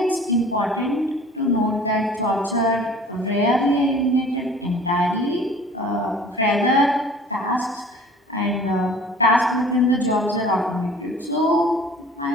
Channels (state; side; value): normal; both; correlation 0.47